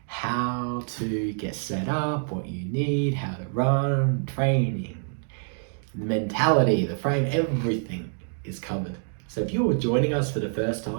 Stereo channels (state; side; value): silent; left; 58 dB below the other